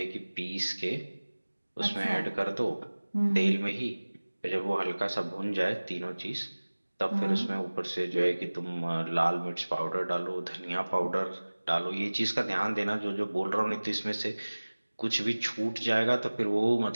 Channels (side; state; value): both; inverted; correlation -1.00